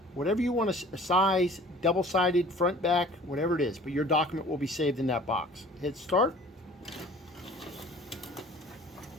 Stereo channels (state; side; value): normal; both; correlation 0.48